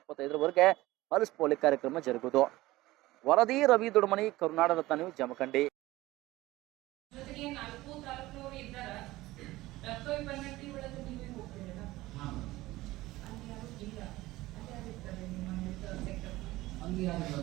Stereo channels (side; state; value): left; quieter; 18.1 dB